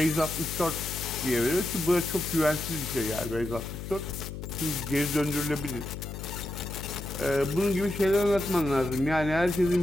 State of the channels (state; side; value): noise; left; hum, 8 dB below the sound